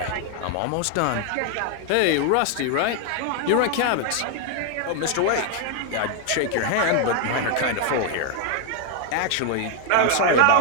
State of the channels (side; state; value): both; different; correlation 0.00